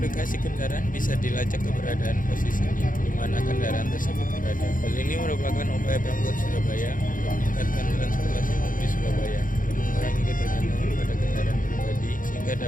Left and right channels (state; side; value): late; right; 0.39 ms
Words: kendaraan bisa dilacak keberadaan posisinya di mana kendaraan tersebut berada. Hal ini merupakan upaya Pemkot Surabaya untuk meningkatkan transportasi umum di Surabaya dan mengurangi ketergantungan pada kendaraan pribadi sehingga